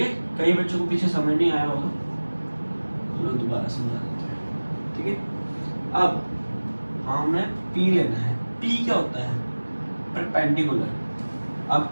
है, कई बच्चों को पीछे समझ नहीं आया होगा, चलो दोबारा समझा देते हैं। ठीक है, अब हमें पी लेना है। पी क्या होता है? परपेंडिकुलर। अब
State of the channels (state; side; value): inverted; both; correlation -1.00